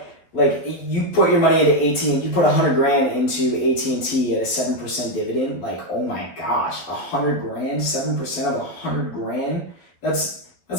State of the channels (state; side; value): late; right; 11 ms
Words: Like you put your money into AT&T, you put $100,000 into AT&T at a 7% dividend. Like, oh my gosh, $100,000, 7% of $100,000. That's